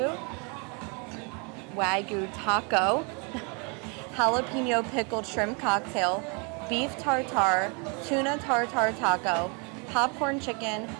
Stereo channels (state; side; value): quieter; left; 34.3 dB